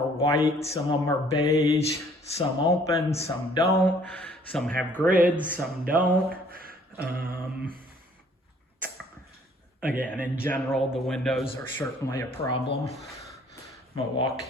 white, some of them are beige, some open, some don't. Some have grids, some don't. Again, in general, the windows are certainly a problem. I'm gonna walk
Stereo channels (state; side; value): normal; both; correlation 0.59